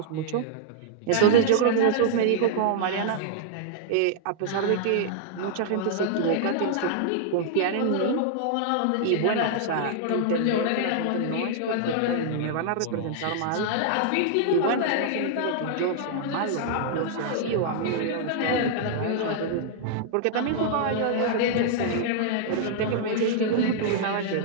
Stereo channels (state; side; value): different; both; correlation -0.01